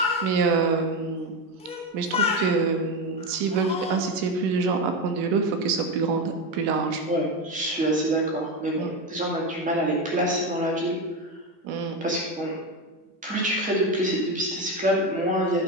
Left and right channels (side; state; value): both; normal; correlation 0.15